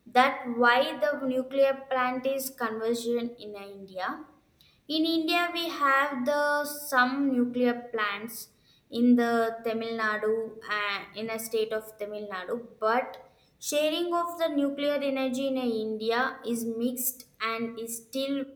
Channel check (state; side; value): identical; both; correlation 1.00